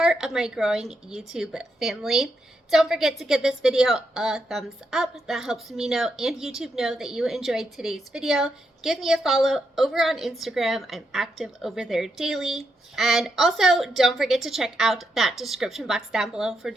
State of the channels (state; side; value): normal; both; correlation 0.81